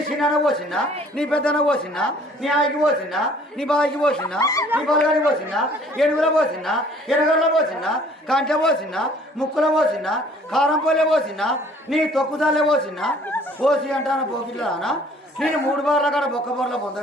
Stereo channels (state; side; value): normal; both; correlation 0.56